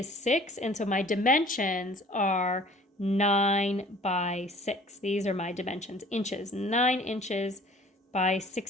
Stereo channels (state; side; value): normal; both; correlation 0.51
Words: 6. And so my dimensions are 9 by 6. These are my dimensions, inches. 9 inches by